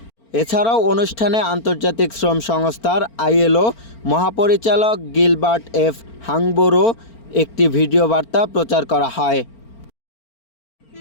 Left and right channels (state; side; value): late; right; 4.4 ms